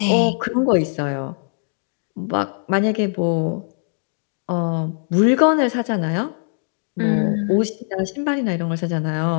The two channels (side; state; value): right; silent; 65 dB below the other